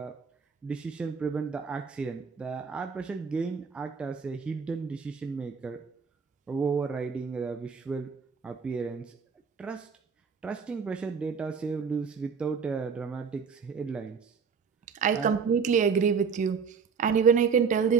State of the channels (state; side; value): quieter; left; 5.9 dB